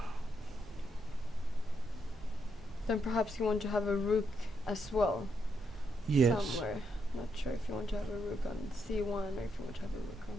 Then perhaps you want to have a rook as well. Yes. Somewhere. Not sure if you want to have a rook on c1 or if you want to have a rook on...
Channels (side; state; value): both; normal; correlation 0.79